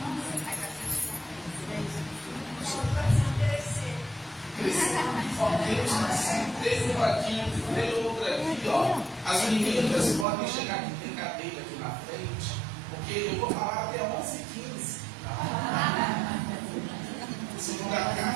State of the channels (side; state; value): left; drops out; at 10.2 s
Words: Teve um aqui, teve outra aqui, ó. As meninas podem chegar aqui, tem cadeira aqui na frente, porque eu vou falar até 11h15. Segunda